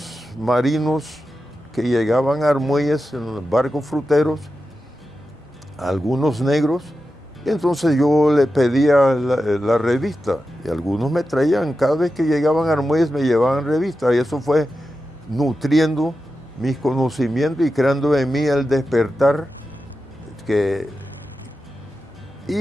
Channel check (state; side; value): normal; both; correlation 0.91